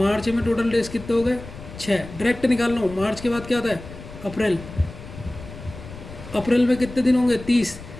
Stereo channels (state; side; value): noise; left; rumble, 14 dB below the sound